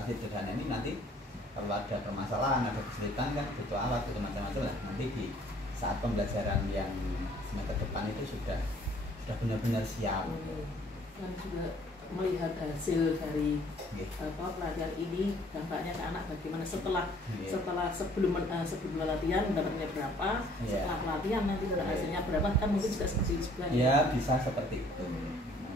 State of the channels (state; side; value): normal; both; correlation 0.58